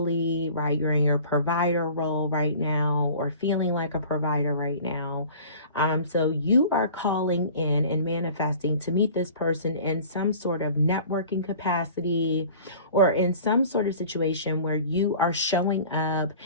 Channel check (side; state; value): both; inverted; correlation -0.45